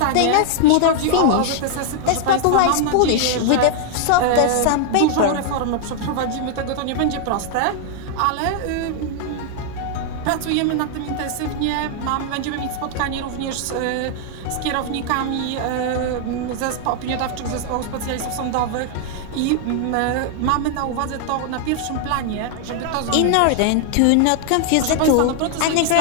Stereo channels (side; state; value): both; different; correlation 0.00